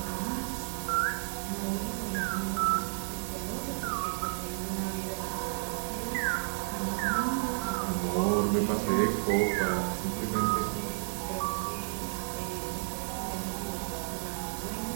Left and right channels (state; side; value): silent; left; 57 dB below the other